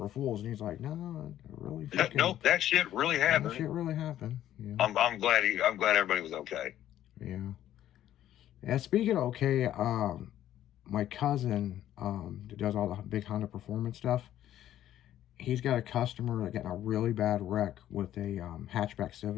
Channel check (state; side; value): quieter; right; 12.2 dB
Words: Fool's, and he's like, "No, it really fucking, Nope, that shit really that happened. shit really happened." Yeah, I'm glad everybody was okay. yeah. And speaking of okay, my cousin that does all the big Honda Performance stuff. He's got a customer that got in a really bad wreck with a hatchback